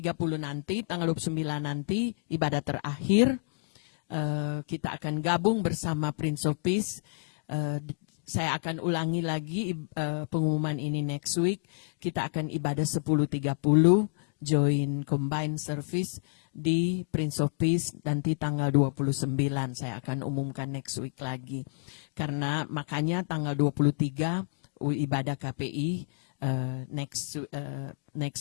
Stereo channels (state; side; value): silent; right; digital silence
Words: nanti, tanggal 29 nanti ibadah terakhir, kita akan gabung bersama Prince of Peace. Saya akan ulangi lagi pengumuman ini next week. Kita akan ibadah 10.30 join combined service di Prince of Peace nanti tanggal 29. Saya akan umumkan next week lagi. Karena makanya tanggal 23 ibadah KPI,